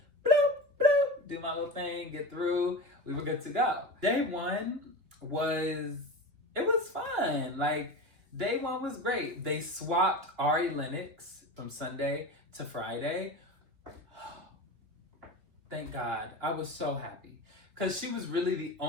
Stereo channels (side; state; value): left; late; 2.7 ms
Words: bloop, bloop, do my little thing, get through. We were good to go. Day 1 was fun. Day 1 was great. They swapped Ari Lennox from Sunday to Friday. Thank God. I was so happy. Because she was really the